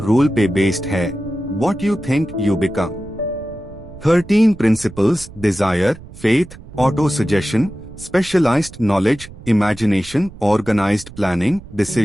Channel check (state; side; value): noise; right; rumble, 17 dB below the sound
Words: पे बेस्ड है, what you think you become. 13 principles, desire, faith, auto suggestion, specialized knowledge, imagination, organized planning,